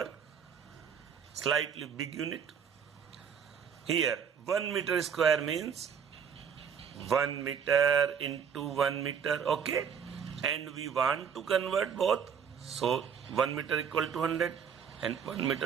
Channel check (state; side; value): quieter; left; 7.1 dB